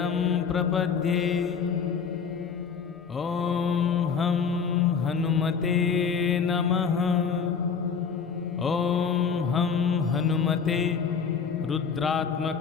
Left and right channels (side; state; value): right; quieter; 6.2 dB